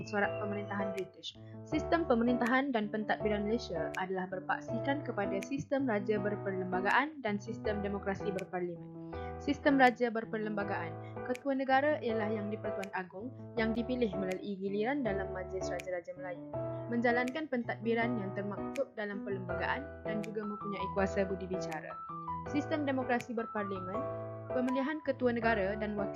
corak pemerintahan British. Sistem pemerintahan dan pentadbiran Malaysia adalah berpaksikan kepada sistem raja berperlembagaan dan sistem demokrasi berparlimen. Sistem raja berperlembagaan, ketua negara ialah Yang di-Pertuan Agong yang dipilih melalui giliran dalam Majlis Raja-Raja Melayu, menjalankan pentadbiran yang termaktub dalam perlembagaan dan juga mempunyai kuasa budi bicara. Sistem demokrasi berparlimen, pemilihan ketua negara dan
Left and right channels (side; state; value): both; identical; correlation 1.00